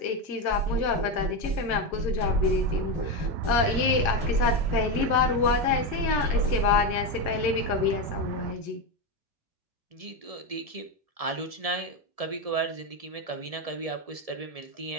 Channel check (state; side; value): late; left; 1.5 ms